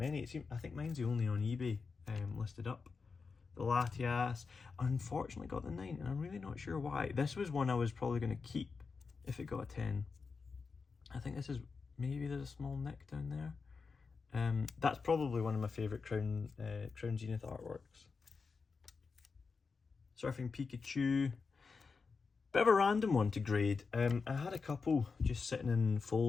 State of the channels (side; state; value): right; quieter; 4.8 dB